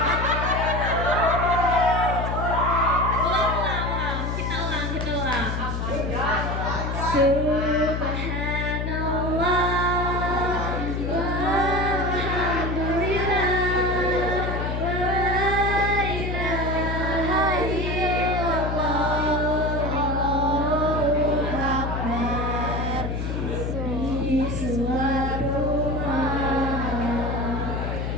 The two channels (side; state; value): left; noise; hum, 2 dB below the sound